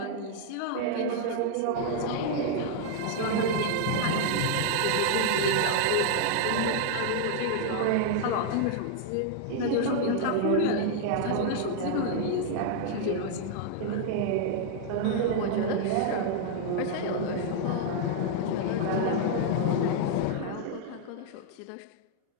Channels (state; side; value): different; both; correlation 0.00